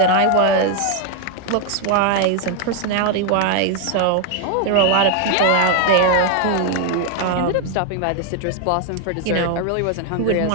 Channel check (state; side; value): different; both; correlation 0.00